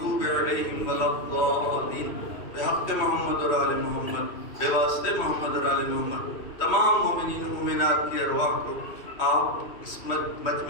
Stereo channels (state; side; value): late; right; 3.1 ms